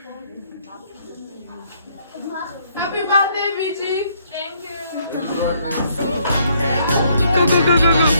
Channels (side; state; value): both; inverted; correlation -0.68